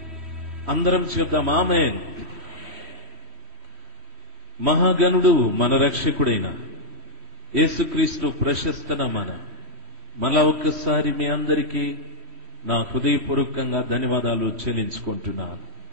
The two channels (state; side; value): late; left; 3.2 ms